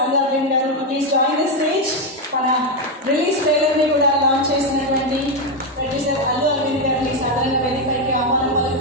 Allu Arvind garu to please join the stage. మన రిలీజ్ ట్రైలర్ ని కూడా లాంచ్ చేసినటువంటి ప్రొడ్యూసర్ అల్లు అరవింద్ గారిని సాధారణ వేదికపైకి ఆహ్వానం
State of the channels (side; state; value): both; normal; correlation 0.06